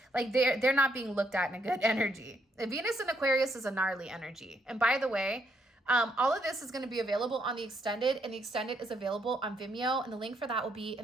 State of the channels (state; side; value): normal; both; correlation 0.74